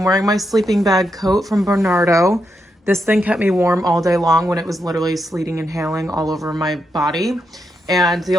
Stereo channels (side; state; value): both; normal; correlation 0.83